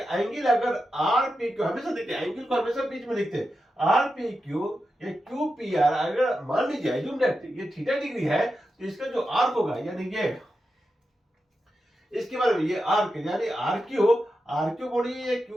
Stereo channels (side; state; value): both; normal; correlation 0.89